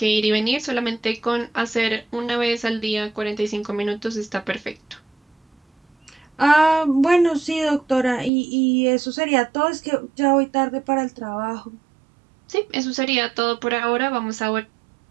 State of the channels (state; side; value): drops out; left; at 8.3 s